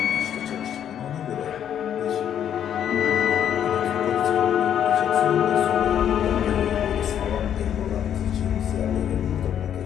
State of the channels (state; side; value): quieter; right; 9.6 dB